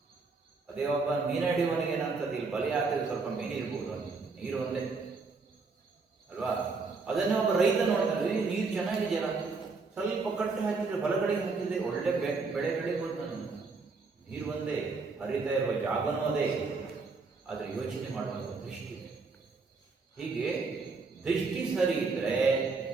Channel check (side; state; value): left; quieter; 4.3 dB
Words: ಅದೇ ಒಬ್ಬ ಮೀನು ಹಿಡಿಯುವವನಿಗೆ ಏನಂತದ್ದು, ಇಲ್ಲಿ ಬಲಿ ಹಾಕಿದ್ರೆ ಸ್ವಲ್ಪ ಮೀನು ಇರ್ಬೋದು, ನೀರು ಒಂದೇ ಅಲ್ವಾ. ಅದನ್ನೇ ಒಬ್ಬ ರೈತ ನೋಡ್ತಾನೆ, ನೀರು ಚೆನ್ನಾಗಿದೆಯಲ್ಲ, ಸ್ವಲ್ಪ ಕಟ್ಟು ಹಾಕಿದ್ರೆ ಬಲಗಡೆಗೆ ಹಾಕಿದ್ರೆ ಒಳ್ಳೆ ಬೆಳೆ ಬೆಳಿಬೋದು. ನಾನು ನೀರು ಒಂದೇ, ಹರಿತಾ ಇರುವ ಜಾಗನೂ ಅದೇ, ಆದರೆ ಯೋಚನೆ ಮಾಡುವಂಥ ದೃಷ್ಟಿ. ಹೀಗೆ ದೃಷ್ಟಿ ಸರಿ ಇದ್ದರೆ